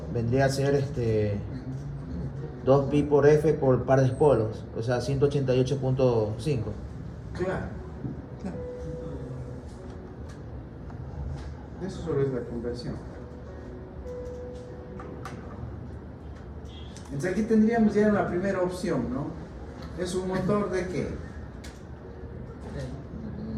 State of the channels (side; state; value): both; identical; correlation 1.00